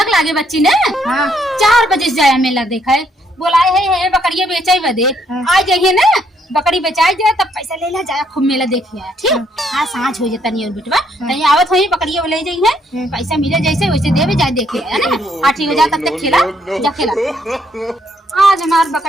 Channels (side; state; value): both; normal; correlation 0.71